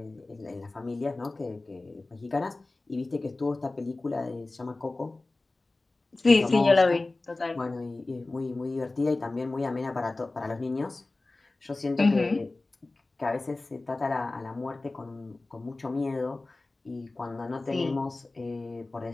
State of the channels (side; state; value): right; quieter; 3.2 dB